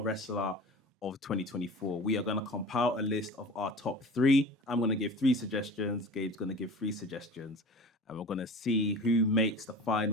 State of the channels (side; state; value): both; normal; correlation 0.38